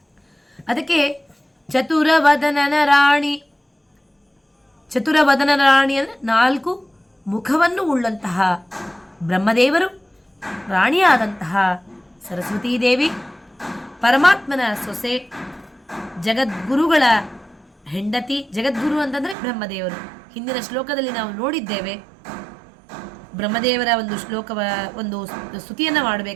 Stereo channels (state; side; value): drops out; left; at 19.4 s